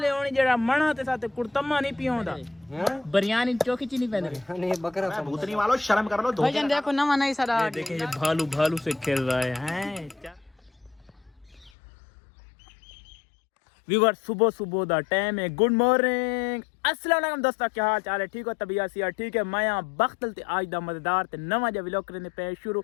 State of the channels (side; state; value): right; drops out; at 11.7 s